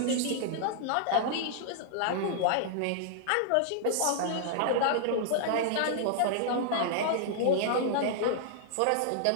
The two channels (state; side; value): different; both; correlation -0.01